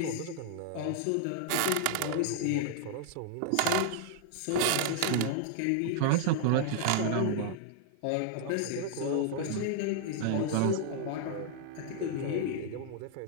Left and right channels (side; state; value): both; different; correlation -0.01